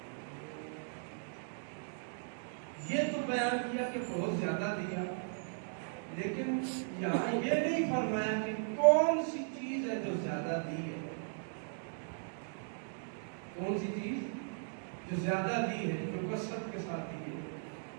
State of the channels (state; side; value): silent; left; digital silence